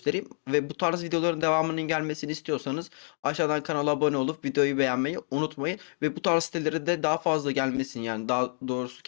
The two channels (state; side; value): silent; right; 59 dB below the other